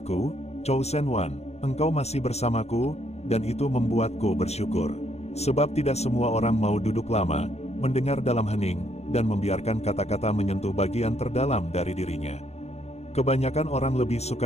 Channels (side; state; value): right; late; 0.31 ms